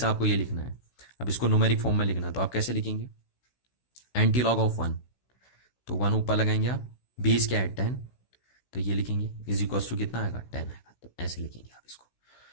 आपको ये लिखना है। अब इसको न्यूमेरिक फॉर्म में लिखना है, तो आप कैसे लिखेंगे, एंटी लॉग ऑफ 1, तो 1 ऊपर लगाएंगे आप, बेस क्या है 10, तो ये लिखेंगे इज इक्वल्स टू कितना आएगा, 10 आएगा। तो ऐसे लिखेंगे आप इसको,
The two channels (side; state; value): right; late; 16 ms